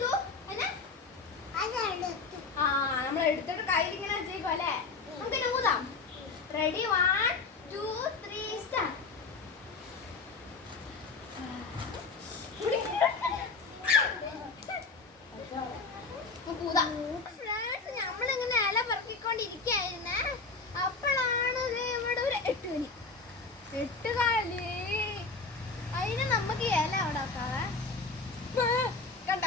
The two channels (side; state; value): right; quieter; 4.2 dB